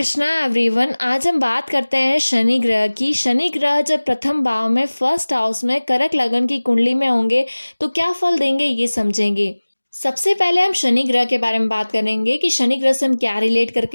एवरीवन। आज हम बात करते हैं शनि ग्रह की। शनि ग्रह जब प्रथम भाव में फर्स्ट हाउस में कर्क लगन की कुंडली में होंगे तो क्या फल देंगे ये समझेंगे। सबसे पहले हम शनि ग्रह के बारे में बात करेंगे कि शनि ग्रह से हम क्या रिलेट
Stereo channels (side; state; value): both; inverted; correlation -1.00